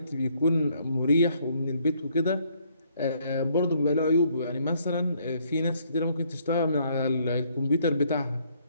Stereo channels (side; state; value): both; inverted; correlation -0.68